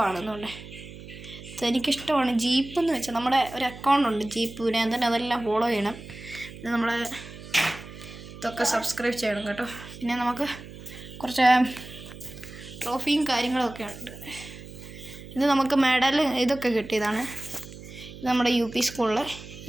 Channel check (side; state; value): right; noise; hum, 15 dB below the sound